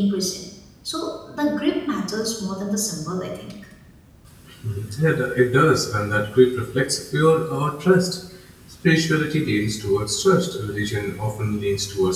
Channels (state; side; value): identical; both; correlation 1.00